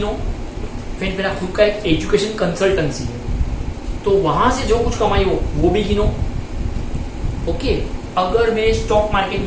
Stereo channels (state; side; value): identical; both; correlation 1.00